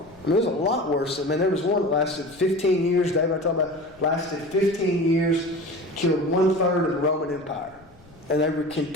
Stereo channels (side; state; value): left; noise; rumble, 28 dB below the sound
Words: It was a lot worse. There was one that lasted 15 years. David, I talked about, lasted 15 years, killed 1/3 of the Roman Empire. And they would